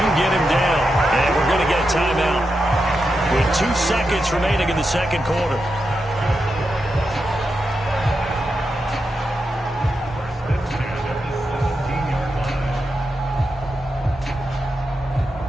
get him down. And we're going to get a timeout with 2 seconds remaining in the second quarter.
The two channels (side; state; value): both; normal; correlation 0.87